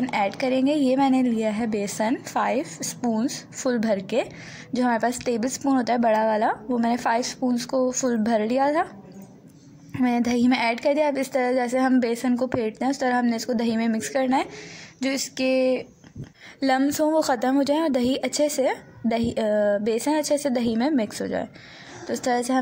ऐड करेंगे। ये मैंने लिया है बेसन 5 स्पून्स फुल भर के, जो हमारे पास टेबल स्पून होता है बड़ा वाला, वो मैंने 5 स्पून्स को फुल भर लिया था, मैंने दही में ऐड कर दिया। अब इस तरह जैसे हम बेसन को फेंटते हैं उस तरह हमने इसको दही में मिक्स करना है, जो इसके लम्स हों वो ख़त्म हो जाए और बेसन अच्छे से दही में मिक्स हो जाए। तो इस तरह से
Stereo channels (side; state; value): both; identical; correlation 1.00